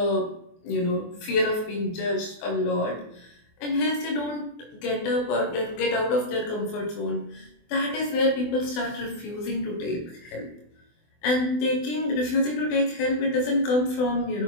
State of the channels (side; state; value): right; late; 24 ms